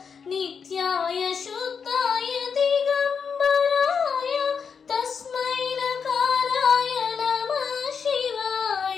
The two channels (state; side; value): quieter; right; 6.2 dB